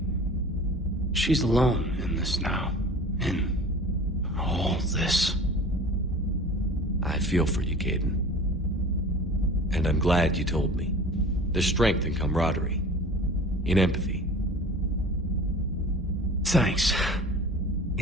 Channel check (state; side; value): normal; both; correlation 0.40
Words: She's alone in this now. In all this. I feel for you, Kaidan. And I'm glad you told me. There's strength in camaraderie. In empathy. Thanks.